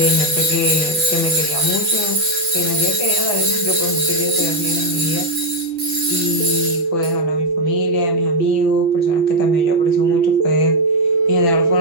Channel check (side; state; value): left; late; 6.0 ms